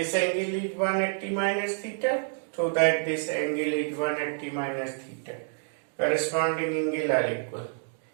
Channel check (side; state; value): left; silent; digital silence